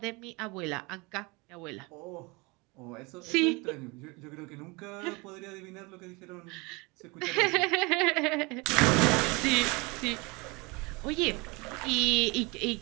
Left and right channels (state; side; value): quieter; left; 26.5 dB